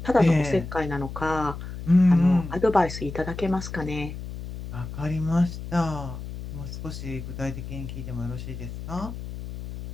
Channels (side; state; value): left; noise; hum, 9 dB below the sound